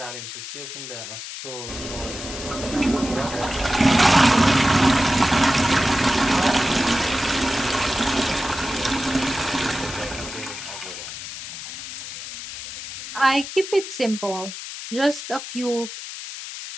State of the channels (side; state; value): left; noise; hiss, 9 dB below the sound